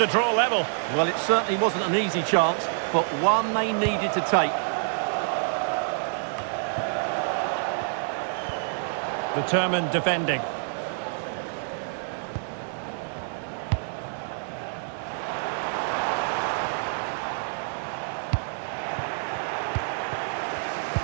draw level. Well, it certainly wasn't an easy chance, but one they needed to take. Determined defending.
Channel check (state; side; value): silent; left; 55 dB below the other